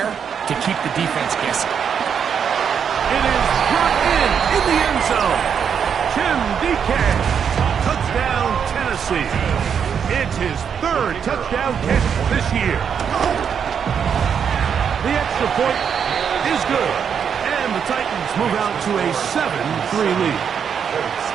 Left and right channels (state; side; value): quieter; left; 7.4 dB